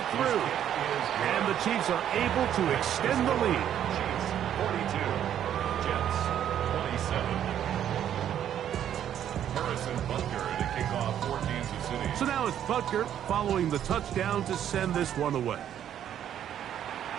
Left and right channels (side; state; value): left; quieter; 10.2 dB